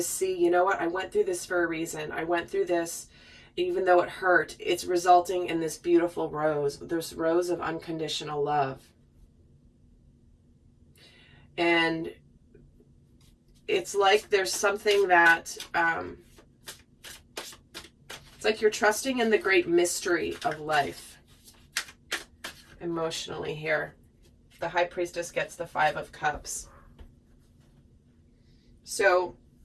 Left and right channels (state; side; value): identical; both; correlation 1.00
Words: see, you know what? I went through this for a reason. I went through this, even though it hurt. It's resulting in this beautiful rose, this rose of unconditional love. And it's like there's something that, it's like you're trusting in the great mystery of life emotionally here. The High Priestess gets the Five of Cups. So